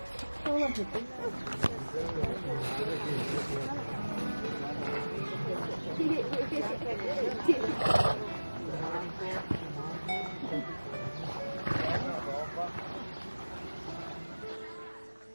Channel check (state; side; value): inverted; both; correlation -1.00